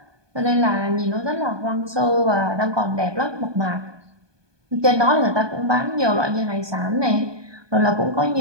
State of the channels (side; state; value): left; late; 1.2 ms